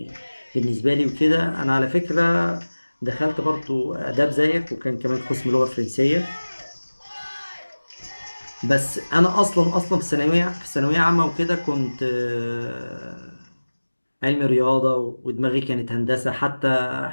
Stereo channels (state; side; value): inverted; both; correlation -1.00